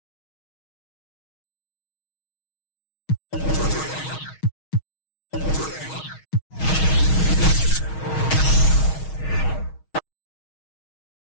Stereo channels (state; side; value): late; right; 6.4 ms